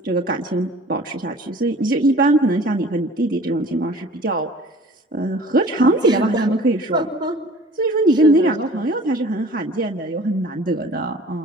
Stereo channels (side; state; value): both; normal; correlation 0.47